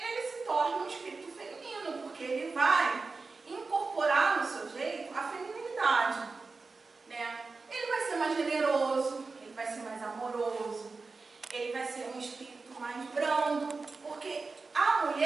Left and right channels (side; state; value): left; quieter; 4.1 dB